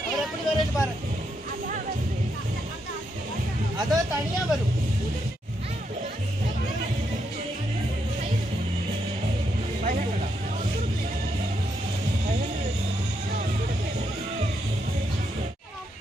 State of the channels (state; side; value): normal; both; correlation 0.80